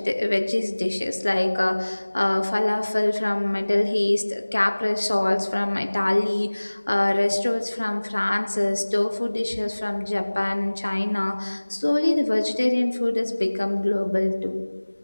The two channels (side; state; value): both; inverted; correlation -1.00